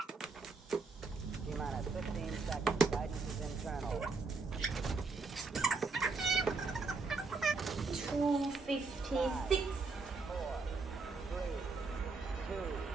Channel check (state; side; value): quieter; left; 4.3 dB